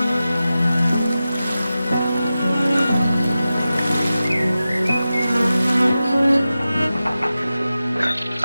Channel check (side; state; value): both; inverted; correlation -0.94